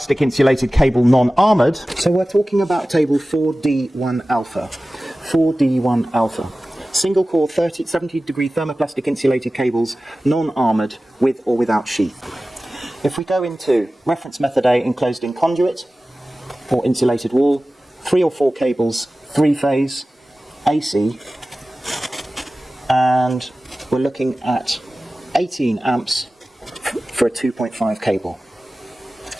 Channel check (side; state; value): both; normal; correlation 0.96